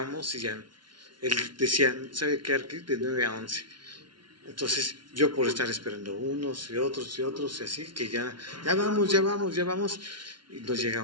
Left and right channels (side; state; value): left; late; 0.72 ms